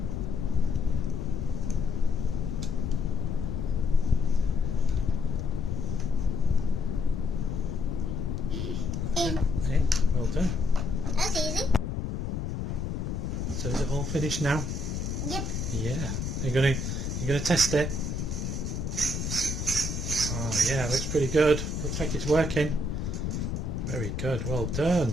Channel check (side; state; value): left; noise; rumble, 3 dB below the sound